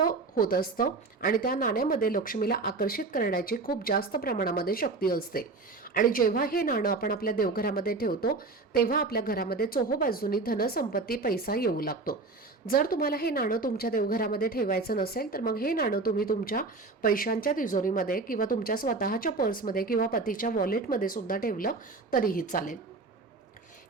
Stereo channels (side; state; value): left; quieter; 3.8 dB